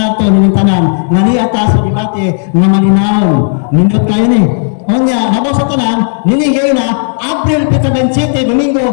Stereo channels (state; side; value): silent; right; digital silence